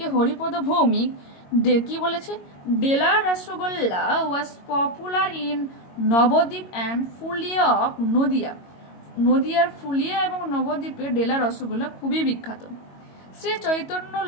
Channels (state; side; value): late; right; 22 ms